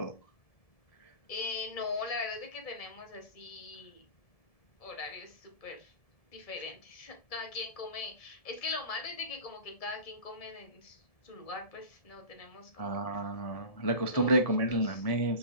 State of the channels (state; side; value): late; right; 1.7 ms